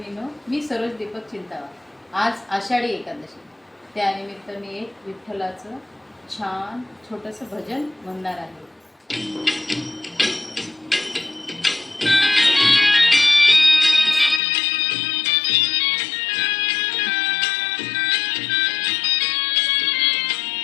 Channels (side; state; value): right; drops out; at 14.4 s